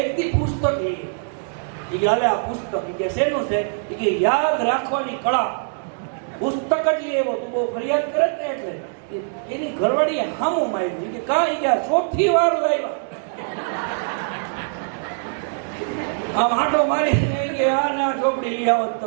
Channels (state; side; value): silent; left; digital silence